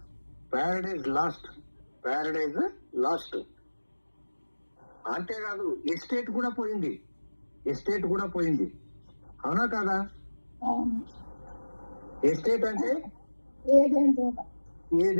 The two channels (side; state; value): both; inverted; correlation -1.00